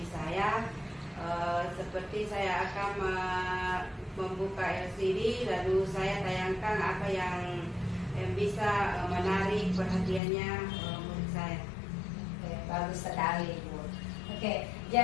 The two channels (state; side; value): drops out; right; at 10.2 s